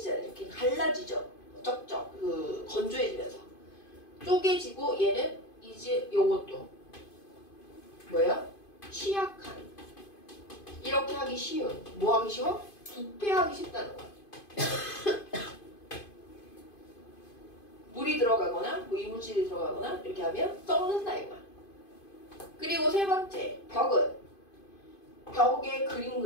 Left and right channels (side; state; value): right; late; 2.5 ms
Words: 이렇게 갈라지죠. 쩍쩍 건조해지면서 쪼개지고 얘는 이제 요것도 뭐야? 취약한. 이렇게 하기 쉬운. 뭐 하기 쉬워? 부패하기 쉽다는 거야. 물이 들어가거나 뭐 이물질이 들어가거나 이렇게 하면 썩는다 이거야. 그리고 세 번째, 벽에 그림